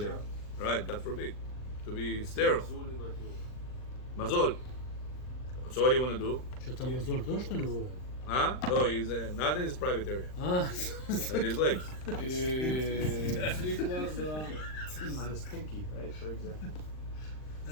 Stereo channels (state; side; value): late; right; 39 ms